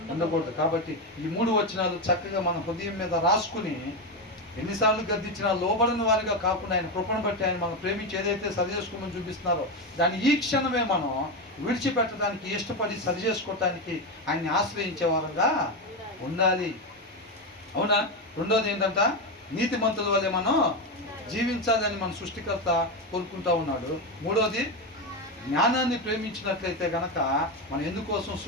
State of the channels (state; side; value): normal; both; correlation 0.12